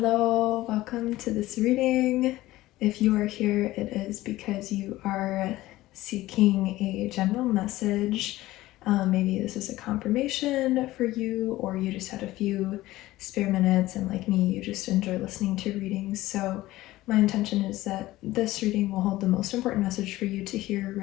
welcome to this reading. If you are here, it is because you are seeking a general message. Maybe this is a confirmation for you, or you just had a few spare minutes, and like me, you just enjoy listening to readings. So my intention is that this reading will hold the most important message for you to hear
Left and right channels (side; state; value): right; quieter; 17.0 dB